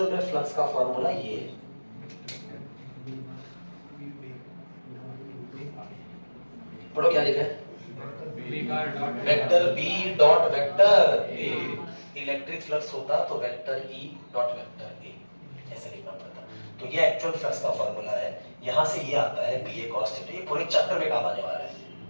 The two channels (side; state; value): both; inverted; correlation -1.00